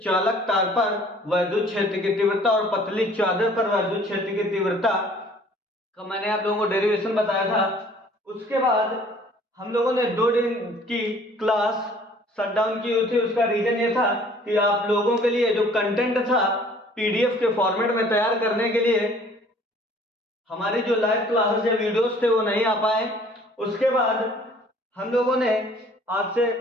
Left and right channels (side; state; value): both; normal; correlation 0.54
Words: चालक तार पर वैद्युत क्षेत्र की तीव्रता और पतली चादर पर वैद्युत क्षेत्र की तीव्रता का मैंने आप लोगों को डेरिवेशन बताया था। उसके बाद हम लोगों ने 2 दिन की क्लास शट डाउन की हुई थी। उसका रीजन ये था कि आप लोगों के लिए जो कंटेंट था पीडीएफ के फॉर्मेट में तैयार करने के लिए हमारी जो लाइव क्लासेस या वीडियोस थे वो नहीं आ पाए। उसके बाद हम लोगों ने आज से